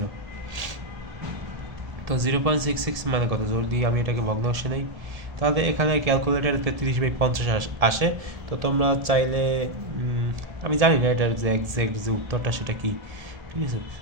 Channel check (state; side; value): late; left; 1.7 ms